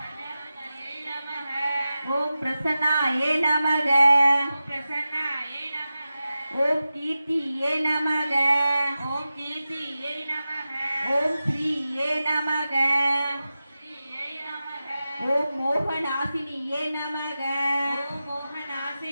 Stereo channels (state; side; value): inverted; both; correlation -0.93